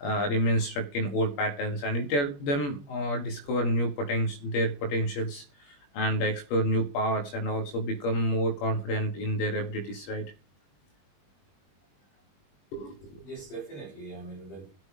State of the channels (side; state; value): right; late; 21 ms